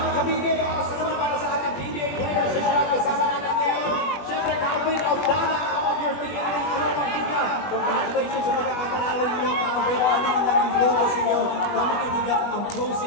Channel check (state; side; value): late; right; 21 ms